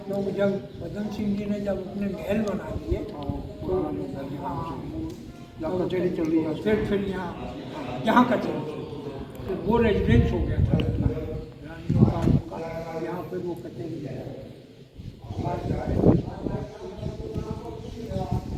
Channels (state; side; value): identical; both; correlation 1.00